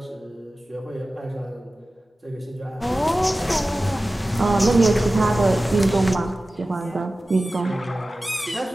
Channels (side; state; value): both; normal; correlation 0.96